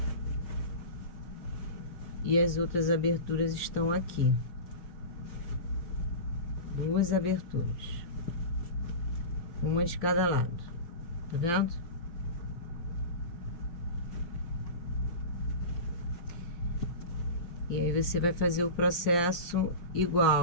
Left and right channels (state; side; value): late; right; 5.7 ms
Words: E as outras aberturas estão aqui. 2 aberturas. Uma de cada lado. Tá vendo? E aí você vai fazer o processo